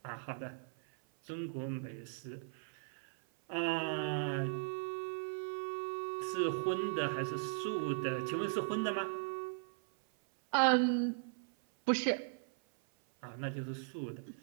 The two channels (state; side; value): silent; left; 52 dB below the other